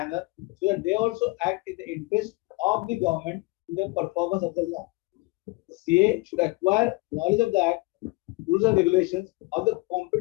so that they also act in the interest of the government in the performance of the law. The CA should acquire knowledge of the Act, rules and regulations of the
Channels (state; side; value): quieter; right; 24.0 dB